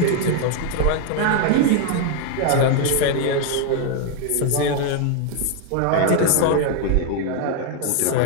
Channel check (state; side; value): different; both; correlation 0.01